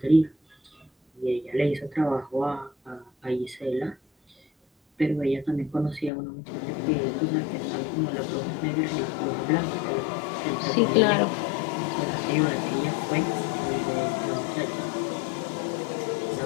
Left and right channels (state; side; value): drops out; right; at 6.1 s